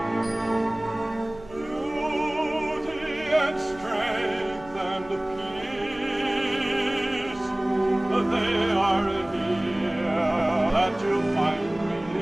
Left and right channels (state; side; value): noise; right; hum, 20 dB below the sound